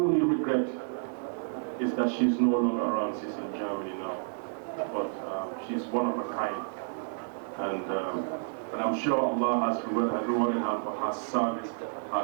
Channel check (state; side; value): silent; left; 58 dB below the other